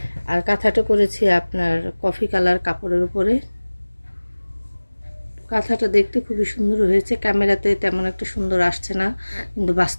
আর কাঁথাটা করেছি আপনার কফি কালার কাপড়ের উপরে। কাঁথাটা দেখতে খুবই সুন্দর হয়েছে। ক্যামেরাতে তেমন একটা সুন্দর আসছে না, কিন্তু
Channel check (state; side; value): inverted; both; correlation -1.00